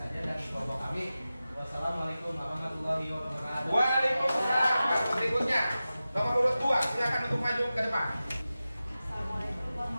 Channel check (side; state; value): both; inverted; correlation -0.95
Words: dan kelompok kami. Wassalamualaikum warahmatullahi wabarakatuh. Waalaikumsalam. Berikutnya nomor urut 2, silakan untuk maju ke depan. Assalamualaikum